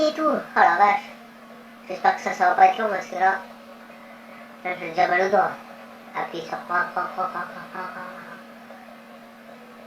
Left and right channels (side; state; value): both; identical; correlation 1.00